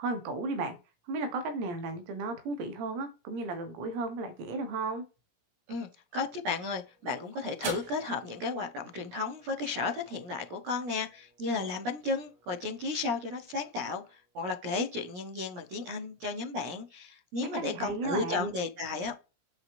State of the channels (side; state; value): left; late; 17 ms